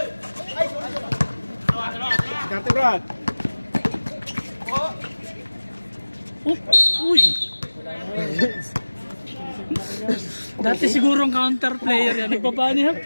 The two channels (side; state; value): both; inverted; correlation -1.00